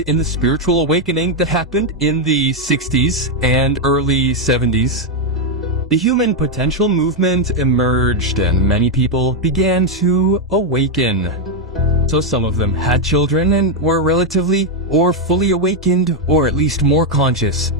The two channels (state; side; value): normal; both; correlation 0.02